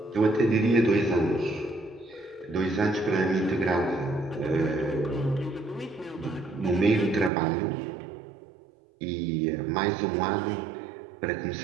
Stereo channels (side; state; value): left; drops out; at 7.3 s